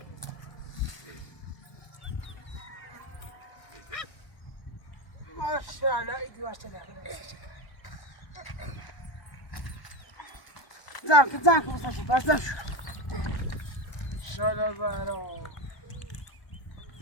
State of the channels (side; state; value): right; late; 1.2 ms